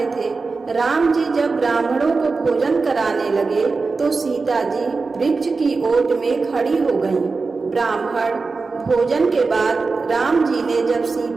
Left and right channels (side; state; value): left; quieter; 4.2 dB